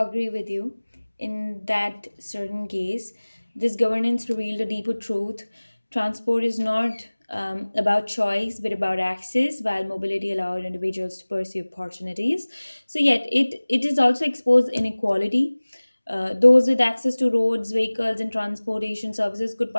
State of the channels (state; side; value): inverted; both; correlation -1.00